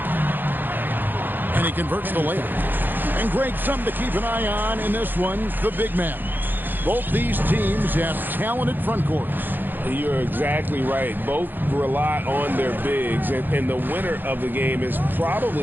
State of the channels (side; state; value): left; late; 0.091 ms